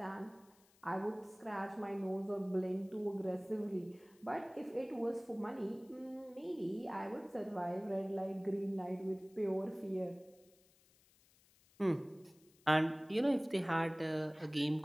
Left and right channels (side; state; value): left; noise; hiss, 30 dB below the sound